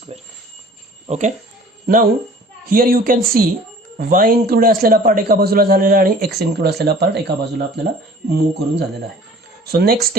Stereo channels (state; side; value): normal; both; correlation 0.48